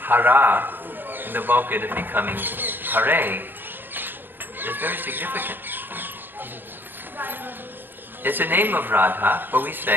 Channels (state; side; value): late; left; 0.096 ms